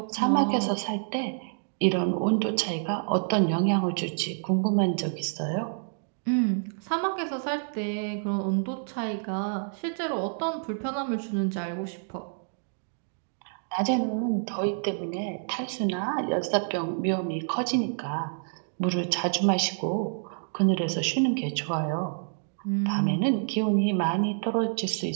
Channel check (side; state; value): left; silent; digital silence